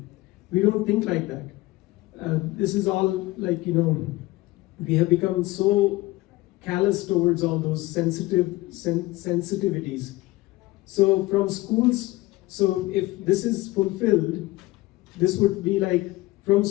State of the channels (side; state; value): right; quieter; 19.4 dB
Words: We don't think like that. This is all we have become so callous towards all those sensitivities. So from schools, if this is fulfilled, this would be like from